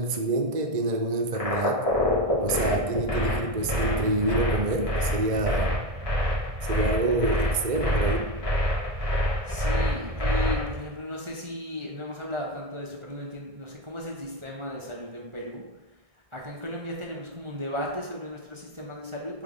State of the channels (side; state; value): left; late; 1.6 ms